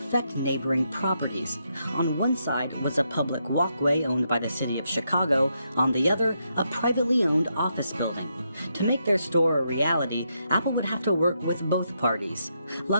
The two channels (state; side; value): inverted; both; correlation -0.80